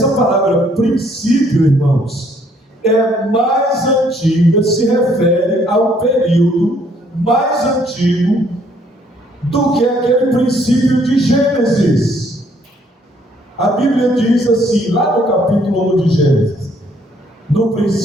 palavra princípio, irmãos, é mais antiga, se refere ao período mais antigo do que aquele princípio de Gênesis. A Bíblia diz assim, lá no capítulo 1 de Gênesis: no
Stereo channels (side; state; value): both; normal; correlation 0.65